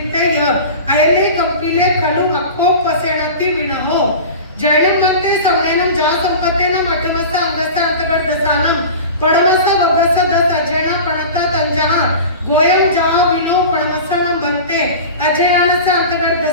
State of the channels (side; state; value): both; inverted; correlation -0.33